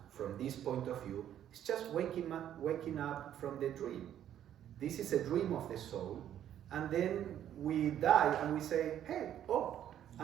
from this point of view is just waking up from the dream. This is a dream of the soul, and then we die and we say, hey,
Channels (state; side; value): quieter; left; 10.7 dB